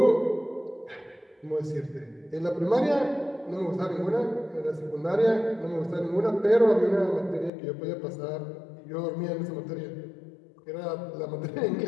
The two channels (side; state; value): right; drops out; at 7.5 s